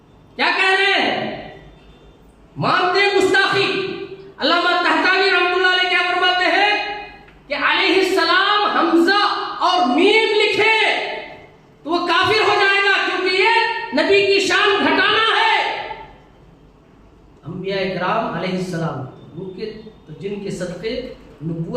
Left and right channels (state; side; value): identical; both; correlation 1.00